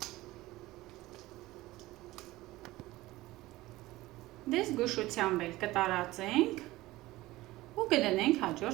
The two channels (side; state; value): left; quieter; 18.3 dB